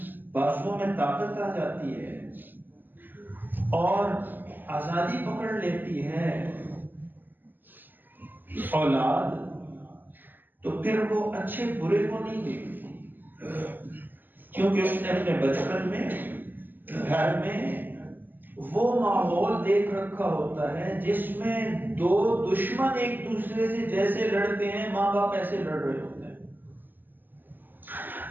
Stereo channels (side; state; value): left; late; 0.090 ms